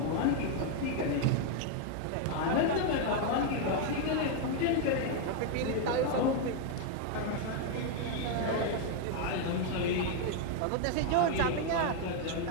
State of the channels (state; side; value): different; both; correlation 0.00